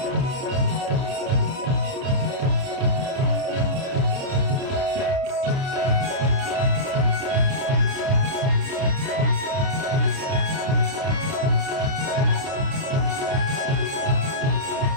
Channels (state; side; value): late; left; 30 ms